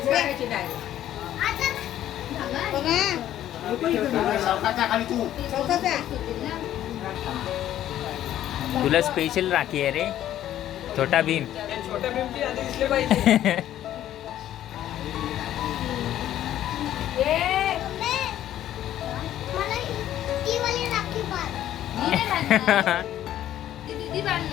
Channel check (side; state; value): right; quieter; 12.2 dB